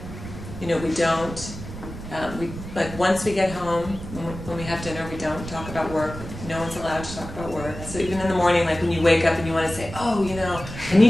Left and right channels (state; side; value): noise; right; rumble, 11 dB below the sound